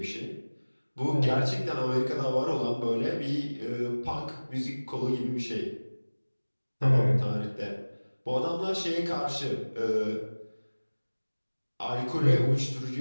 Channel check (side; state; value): both; inverted; correlation -1.00